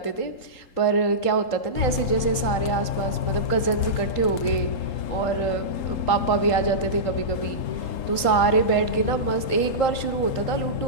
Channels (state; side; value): late; right; 3.8 ms